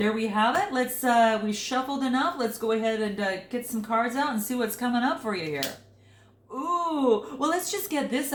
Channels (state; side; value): identical; both; correlation 1.00